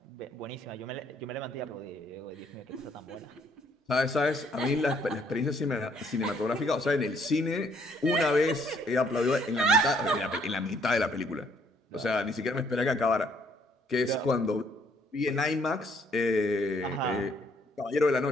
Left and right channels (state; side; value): normal; both; correlation 0.66